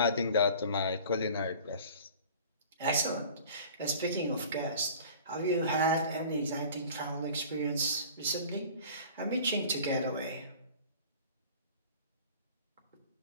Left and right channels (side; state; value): both; inverted; correlation -0.43